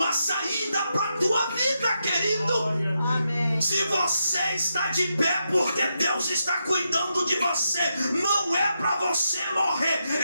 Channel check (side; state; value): both; inverted; correlation -0.84